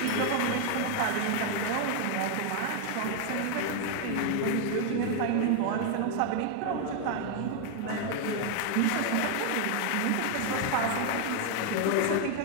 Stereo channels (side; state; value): both; different; correlation 0.00